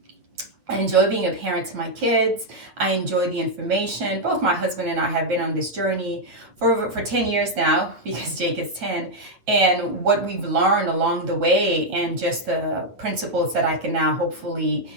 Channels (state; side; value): late; left; 8.9 ms